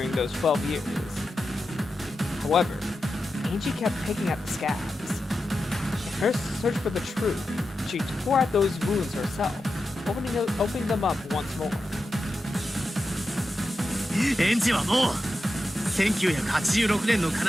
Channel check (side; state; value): both; normal; correlation 0.90